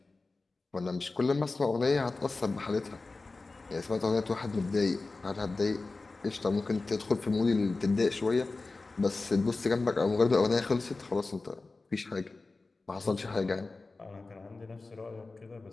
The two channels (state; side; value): quieter; right; 3.6 dB